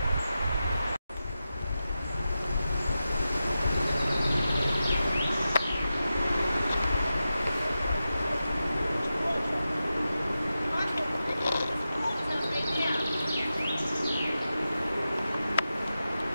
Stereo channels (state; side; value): inverted; both; correlation -0.91